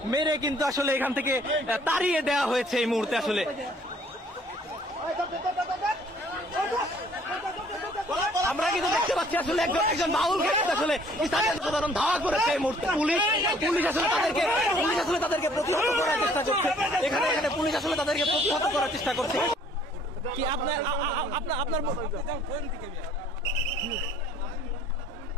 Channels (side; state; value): both; normal; correlation 0.58